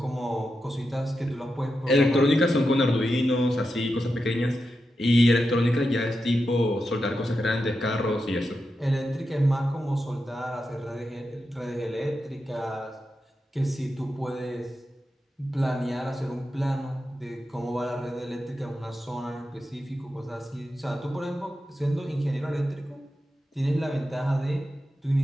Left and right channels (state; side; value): normal; both; correlation 0.88